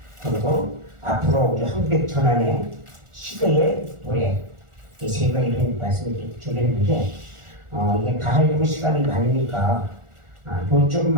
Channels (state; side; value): late; left; 1.4 ms